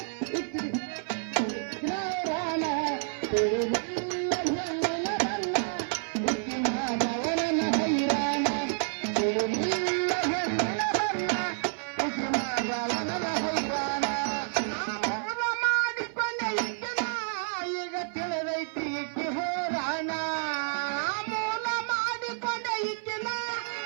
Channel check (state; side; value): silent; left; 56 dB below the other